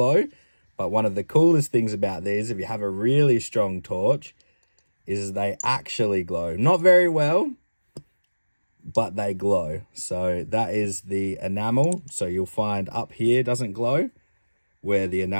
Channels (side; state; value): both; inverted; correlation -1.00